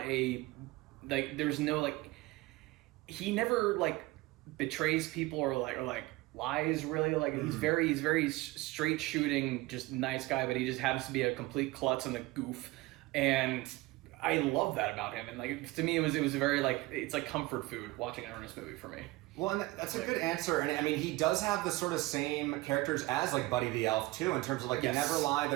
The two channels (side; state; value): left; quieter; 20.6 dB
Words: there's no he never betrays people or lies really. He's very straight shooting, just nice guy, but he just happens to be a complete klutz and a goof, and I love that about him. And to me, it was a very it's like comfort food watching an Ernest movie for me. Well, and that's a good answer. And I mean, he does have the sort of same characters as Buddy the Elf too, in terms of he never lied.